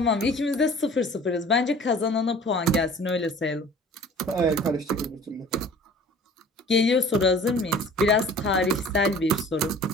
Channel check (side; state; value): both; normal; correlation 0.47